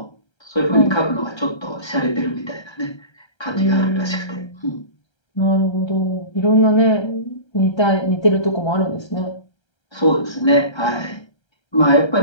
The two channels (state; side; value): late; right; 1.3 ms